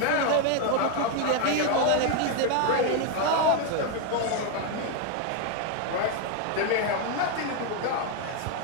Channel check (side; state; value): both; different; correlation 0.01